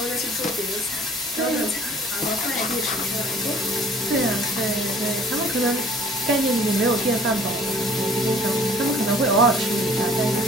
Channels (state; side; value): normal; both; correlation 0.52